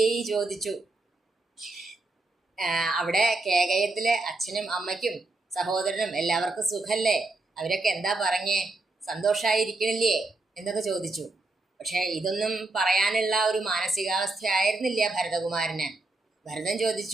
ചോദിച്ചു, അവിടെ കേകയത്തിലെ അച്ഛനും അമ്മയ്ക്കും സഹോദരനും എല്ലാവർക്കും സുഖല്ലേ? അവരൊക്കെ എന്താ പറഞ്ഞേ? സന്തോഷായിരിക്കണില്ലേ എന്നൊക്കെ ചോദിച്ചു. പക്ഷെ ഇതൊന്നും പറയാനുള്ള ഒരു മാനസികാവസ്ഥ ആയിരുന്നില്ല ഭരതകുമാരന്. ഭരതൻ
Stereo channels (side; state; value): left; quieter; 3.1 dB